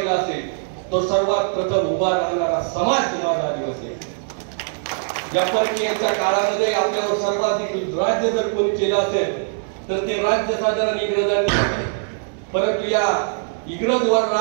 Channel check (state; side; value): silent; left; digital silence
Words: असेल तो सर्वात प्रथम उभा राहणारा समाज माझा आदिवासी. या परकीयांच्या काळामध्ये आपल्यावर सर्वाधिक राज्य जर कोणी केलं असेल तर ते राज्य साधारण इंग्रजांनी. परंतु या इंग्रजवर